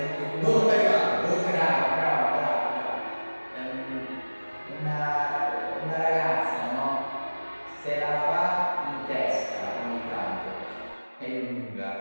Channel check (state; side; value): inverted; both; correlation -1.00